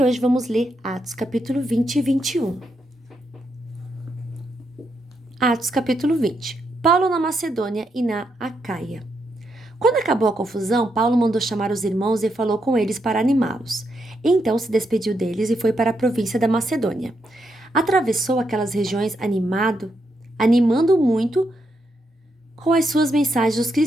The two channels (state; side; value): normal; both; correlation 0.80